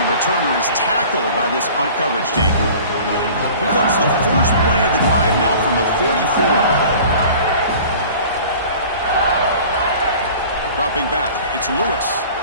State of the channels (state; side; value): inverted; both; correlation -0.44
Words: returner is tackled by this punt coverage team. Here comes the first play of the drive now from the 44. Dropping back, it's Lewis.